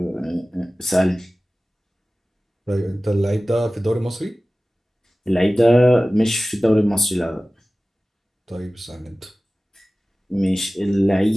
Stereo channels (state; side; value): normal; both; correlation 0.97